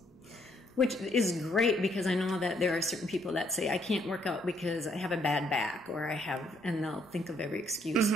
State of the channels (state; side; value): normal; both; correlation 0.70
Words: Which is great, because I know that there are certain people that say, I can't work out because I have a bad back, or and they'll think of every excuse.